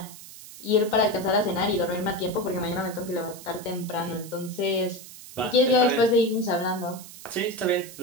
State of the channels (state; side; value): noise; right; hiss, 16 dB below the sound